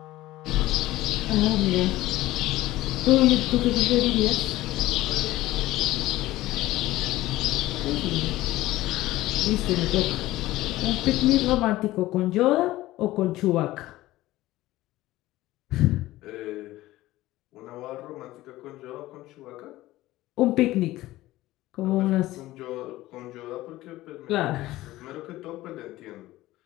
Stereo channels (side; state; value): right; quieter; 16.8 dB